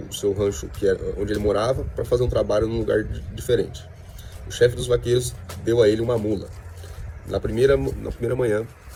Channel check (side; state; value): both; identical; correlation 1.00